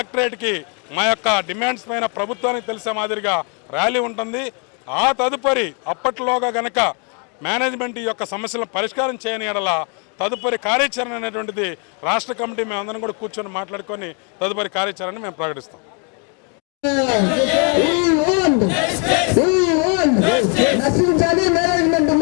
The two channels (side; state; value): right; quieter; 37.4 dB